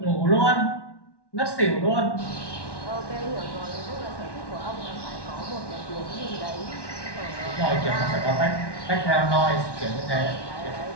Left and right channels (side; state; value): right; late; 1.1 ms